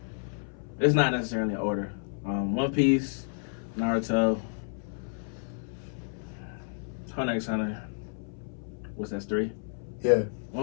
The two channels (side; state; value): right; silent; 57 dB below the other